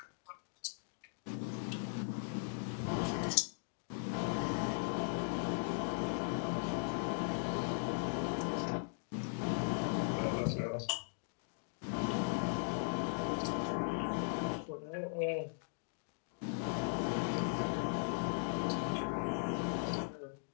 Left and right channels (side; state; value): right; silent; digital silence